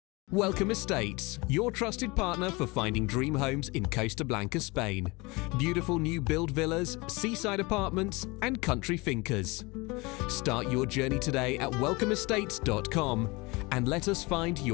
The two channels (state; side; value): quieter; right; 25.1 dB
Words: Welcome Estates, your trusted partner for finding dream homes in Costa Blanca, Spain. Beautiful new build villas, seaside apartments and country fincas. Start your journey today at welcomeestates.com and let us find